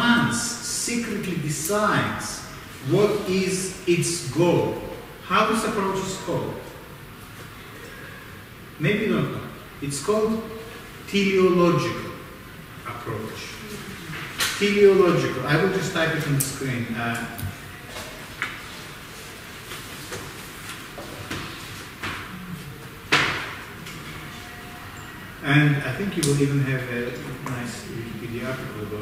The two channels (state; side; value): identical; both; correlation 1.00